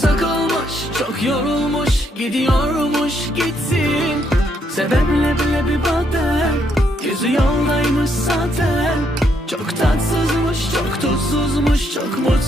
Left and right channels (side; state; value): both; normal; correlation 0.74